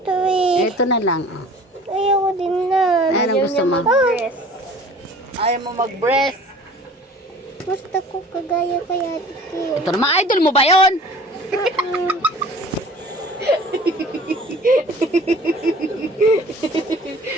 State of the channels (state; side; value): normal; both; correlation 0.46